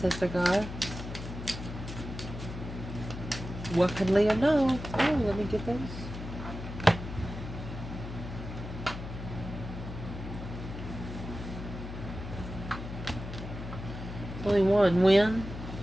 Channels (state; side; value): noise; left; hum, 9 dB below the sound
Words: guides. What can Leo know? Oh, let me get those. Only one. When?